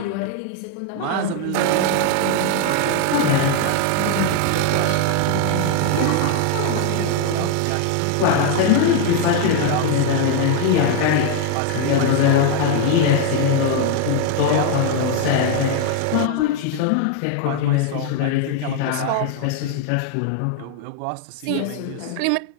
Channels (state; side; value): different; both; correlation 0.00